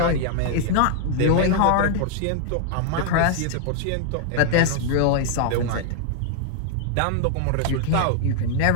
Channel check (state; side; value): different; both; correlation 0.00